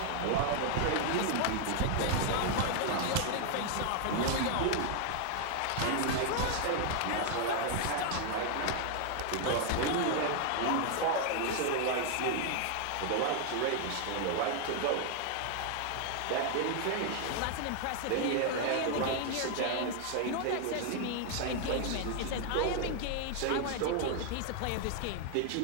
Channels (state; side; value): different; both; correlation 0.00